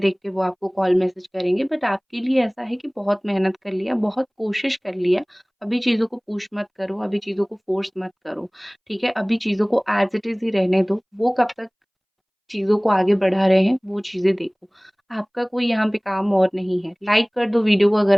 के वो आपको कॉल मैसेज करेंगे, बट आपके लिए ऐसा है कि बहुत मेहनत कर लिया, बहुत कोशिश कर लिया, अभी चीज़ों को पुश मत करो, अभी चीज़ों को फ़ोर्स मत करो, ठीक है? अभी चीज़ों को एज़ इट इज़ ही रहने दो, वो कब तक चीज़ों को आगे बढ़ा रहे हैं, वो चीज़ें देखो। आपका कोई यहाँ पे काम और नहीं है। लाइक कर दो वीडियो को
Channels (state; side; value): identical; both; correlation 1.00